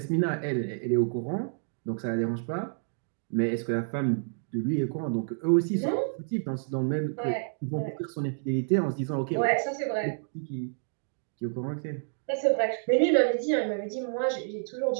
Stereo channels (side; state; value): left; silent; digital silence